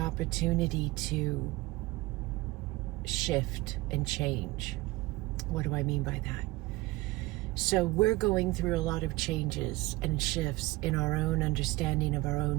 to shift and change. What do I mean by that? So we're going through a lot of changes and shifts in our own understanding of our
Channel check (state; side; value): quieter; left; 20.4 dB